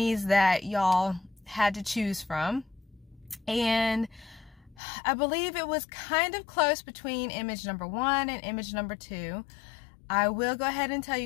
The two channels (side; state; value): right; drops out; at 4.8 s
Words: that y'all had to choose from. And I believe it was kind of close between image number 1 and image number 2. I will go ahead and tell